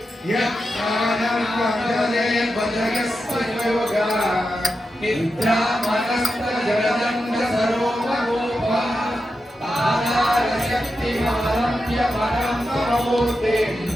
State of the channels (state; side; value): normal; both; correlation 0.89